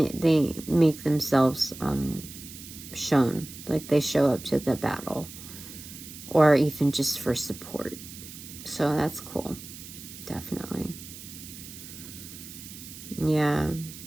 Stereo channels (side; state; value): right; noise; hiss, 14 dB below the sound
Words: make themselves shown, like they show up to the battle, or even just for support. So that's cool, definitely. Yeah.